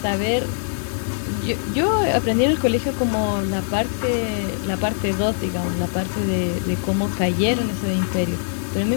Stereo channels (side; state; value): right; silent; 64 dB below the other